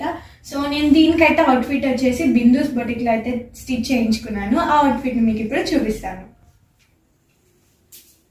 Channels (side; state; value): both; identical; correlation 1.00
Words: సో నేను దీనికైతే అవుట్ఫిట్ వచ్చేసి బిందూస్ బొటిక్లో అయితే స్టిచ్ చేయించుకున్నాను. ఆ అవుట్ఫిట్ని మీకు ఇప్పుడు చూపిస్తాను.